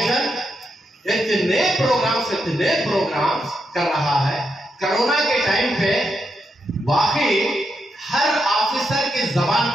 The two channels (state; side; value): normal; both; correlation 0.82